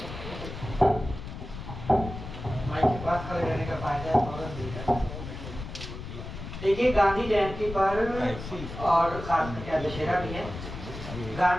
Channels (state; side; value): noise; left; rumble, 10 dB below the sound